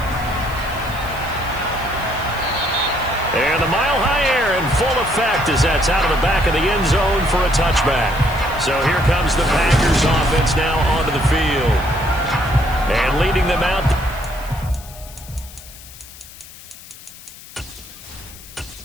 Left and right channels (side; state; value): left; noise; hiss, 18 dB below the sound